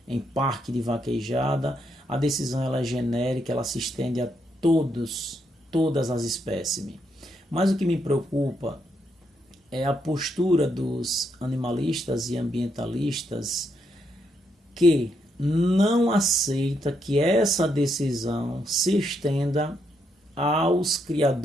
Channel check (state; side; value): normal; both; correlation 0.78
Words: em parque de vaquejada. A decisão ela é genérica, ela se estende a todas as espécimes. Mas o que me preocupa é a postura dos animalistas e ambientalistas que não aceita que essa decisão se estenda aos